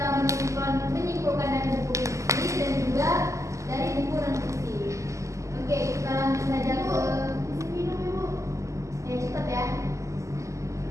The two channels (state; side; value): late; left; 0.15 ms